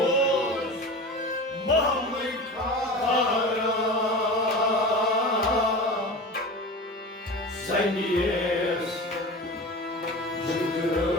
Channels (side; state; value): both; normal; correlation 0.32